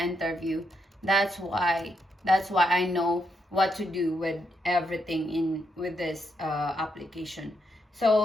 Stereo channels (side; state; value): both; normal; correlation 0.79